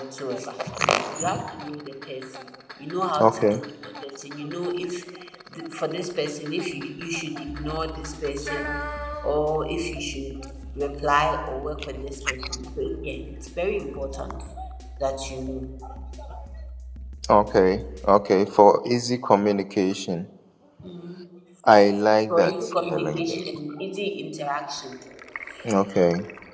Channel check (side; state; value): both; identical; correlation 1.00